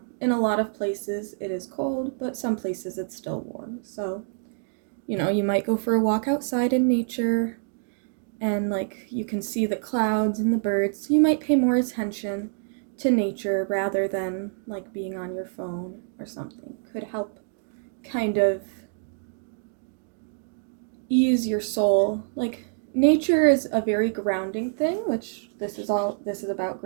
in a lot of places it is cold, but some places it's still warm. So, you know, you might go for a walk outside in nature and, like, you can see the clouds and the birds. You might pay more attention to nature rather than, like, being on your phone or something. Could help kind of ease your soul. Like, nature is a very grounding thing, which this is about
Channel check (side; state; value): left; silent; digital silence